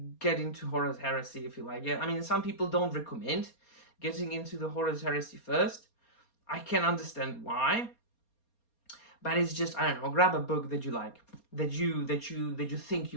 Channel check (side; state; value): right; late; 4.3 ms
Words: get into Horus Heresy if you like it. I mean, some people don't recommend getting into the Horus Heresy first. I can understand why. but it's just, I don't know, grab a book that you like, that you think